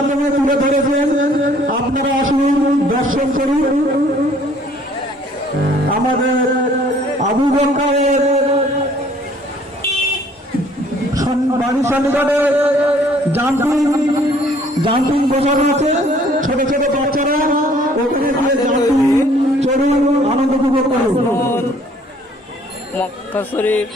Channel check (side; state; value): both; normal; correlation 0.58